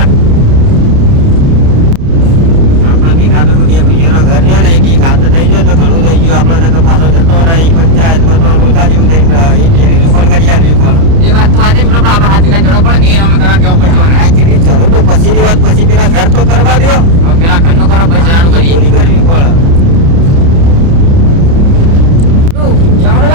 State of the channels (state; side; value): late; left; 30 ms